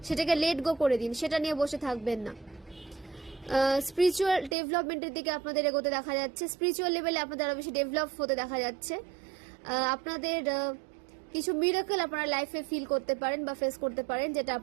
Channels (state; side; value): drops out; left; at 4.5 s